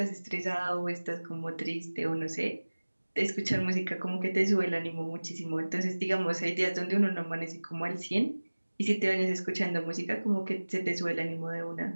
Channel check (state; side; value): inverted; both; correlation -1.00